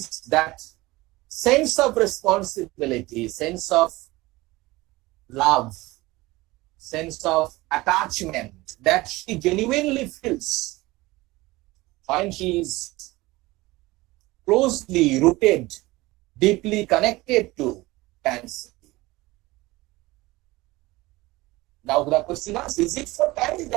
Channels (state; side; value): quieter; left; 20.2 dB